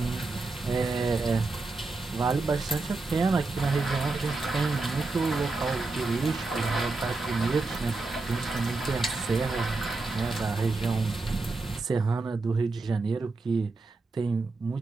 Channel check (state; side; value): quieter; left; 3.5 dB